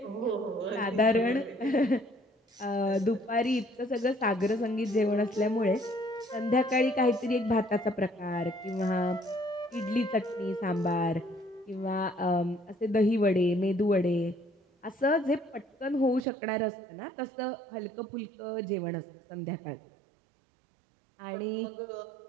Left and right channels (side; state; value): left; drops out; at 16.2 s